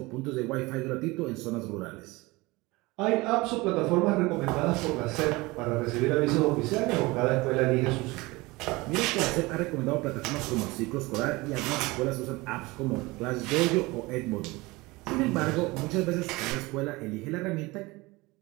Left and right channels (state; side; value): quieter; left; 22.4 dB